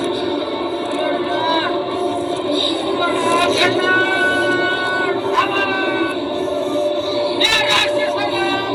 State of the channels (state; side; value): identical; both; correlation 1.00